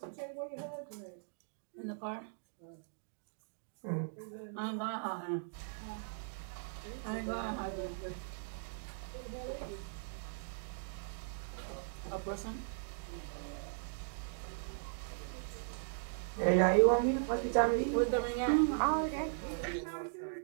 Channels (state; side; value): silent; left; digital silence